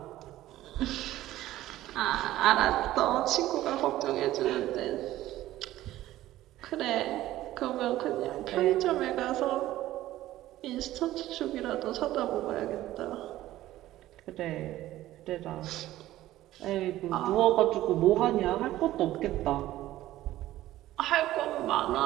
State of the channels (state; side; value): quieter; left; 14.9 dB